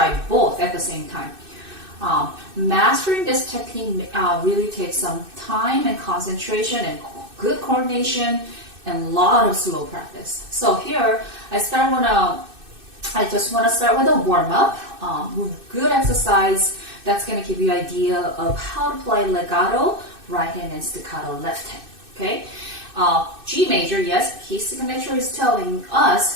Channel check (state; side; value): late; left; 2.6 ms